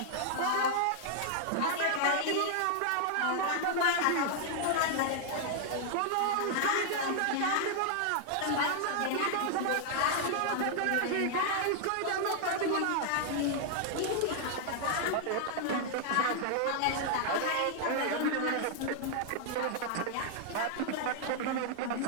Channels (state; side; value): different; both; correlation 0.00